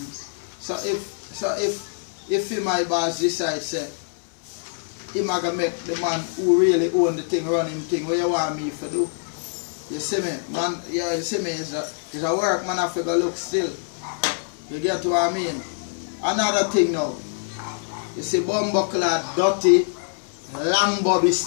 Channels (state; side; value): silent; right; 62 dB below the other